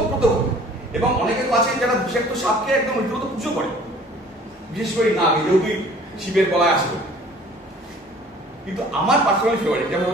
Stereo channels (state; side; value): normal; both; correlation 0.51